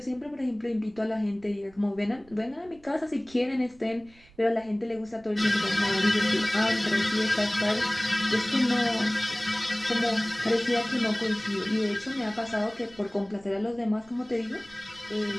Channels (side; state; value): right; noise; rumble, 26 dB below the sound